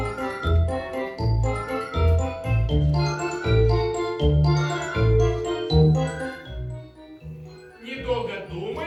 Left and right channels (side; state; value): both; identical; correlation 1.00